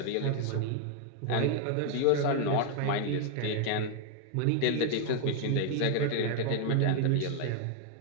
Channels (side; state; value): both; different; correlation 0.00